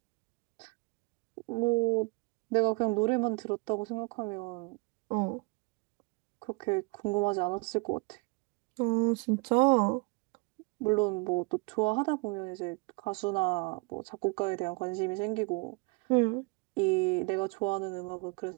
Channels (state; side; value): quieter; left; 29.6 dB